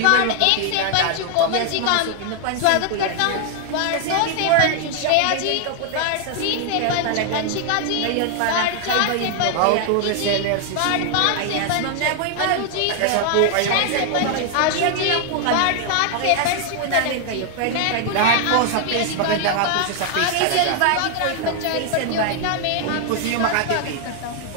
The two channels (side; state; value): both; different; correlation 0.00